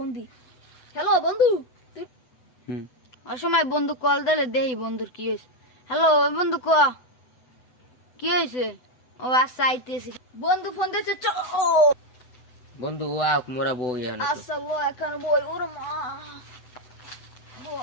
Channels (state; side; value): late; right; 8.0 ms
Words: দি। হ্যালো বন্ধু, তুই অসময় বন্ধু কল দিলে দেই বন্ধুর কি হয়েছে। হ্যালো বন্ধু ক কি হয়েছে? ও আচ্ছা আইতেছি। বন্ধু ফোন দিছে চ। বন্ধু ও আক মোরা বউ ইয়ানো তো। আচ্ছা ল একখানে বই ওরে মা